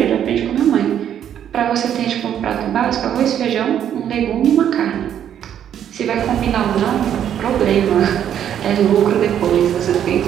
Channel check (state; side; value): quieter; left; 9.8 dB